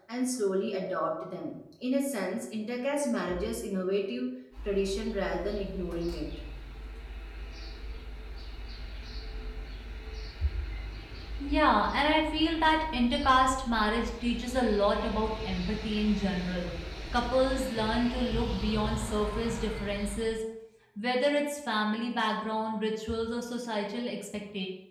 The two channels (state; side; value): identical; both; correlation 1.00